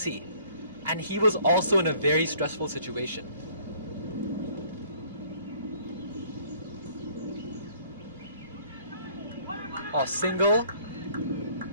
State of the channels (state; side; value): inverted; both; correlation -0.58